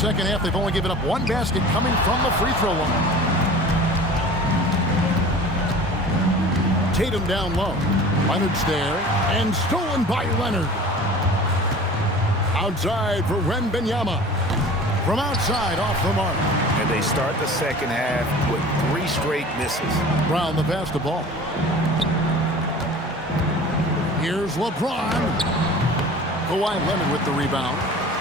half, they've only given up 1 basket coming from the free throw line. Tatum down low. Leonard's there, and stolen by Leonard. Outside for Wembanyama. From outside, off the mark. And they start the second half with 3 straight misses. Brown the pass the ball. Here's LeBron. Kawhi Leonard with the rebound.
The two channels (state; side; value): normal; both; correlation 0.41